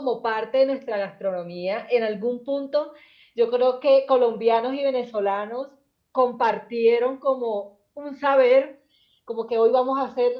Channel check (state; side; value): identical; both; correlation 1.00